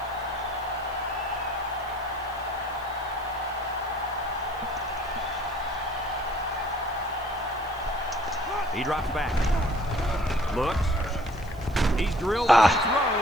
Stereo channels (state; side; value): noise; left; hiss, 25 dB below the sound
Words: He drops back. Looks. He's drilled and